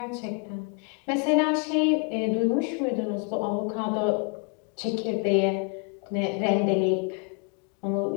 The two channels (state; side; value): quieter; right; 35.9 dB